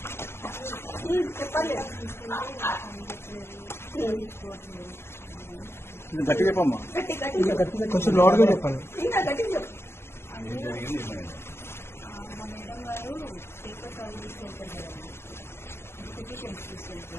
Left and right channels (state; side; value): late; right; 0.12 ms